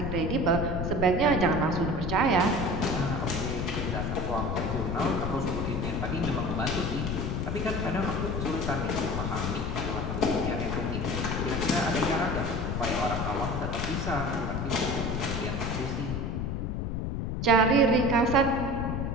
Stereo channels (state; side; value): noise; left; rumble, 2 dB below the sound